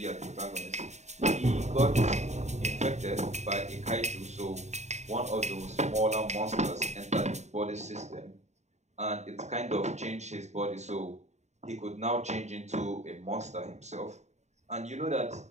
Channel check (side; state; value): left; late; 0.33 ms